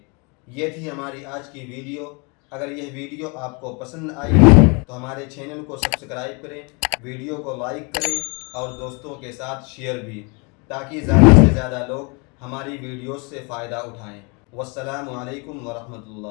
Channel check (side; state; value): right; quieter; 31.5 dB